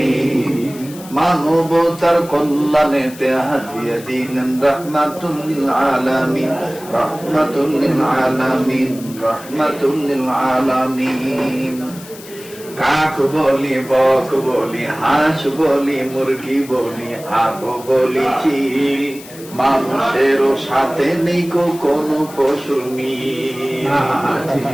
মানবতার কল্যাণেতে হাদিয়া দিলেন রাহমাতুল লিল আলামিন, রাহমাতুল লিল আলামিন, রাহমাতুল লিল আলামিন। কাক বলি, বক বলি, হাঁস বলি, মুরগি বলি, আগো বলি চিল, মানুষেরও সাথে নেই কোনো পশুর মিল।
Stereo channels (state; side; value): noise; left; hiss, 18 dB below the sound